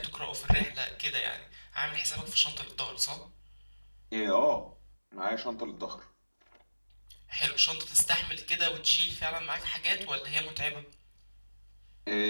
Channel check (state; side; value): inverted; both; correlation -1.00